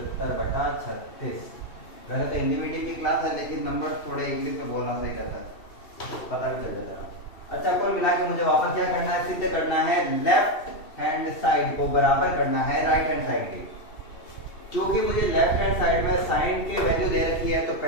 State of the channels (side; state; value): right; late; 2.7 ms